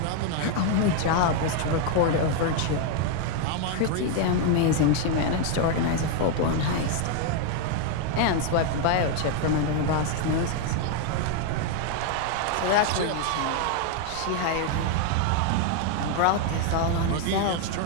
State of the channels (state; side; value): different; both; correlation 0.01